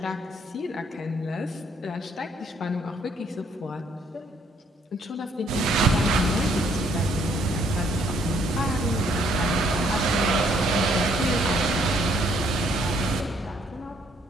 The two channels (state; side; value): normal; both; correlation 0.67